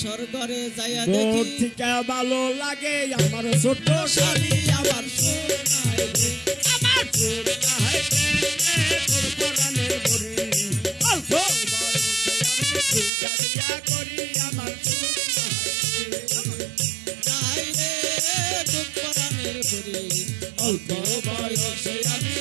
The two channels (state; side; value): drops out; left; at 13.1 s